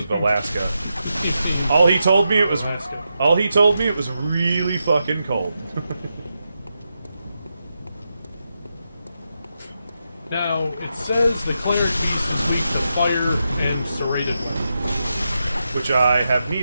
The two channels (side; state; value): both; inverted; correlation -0.87